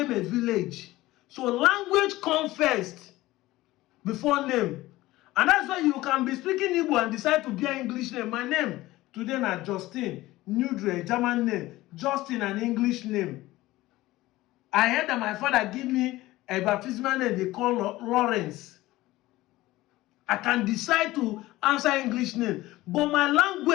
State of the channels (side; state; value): right; quieter; 17.7 dB